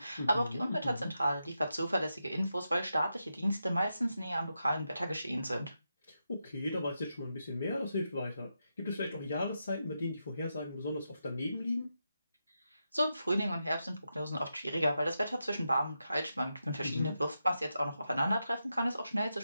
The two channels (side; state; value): both; inverted; correlation -0.87